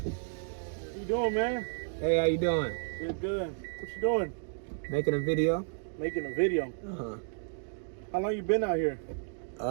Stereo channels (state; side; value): silent; left; digital silence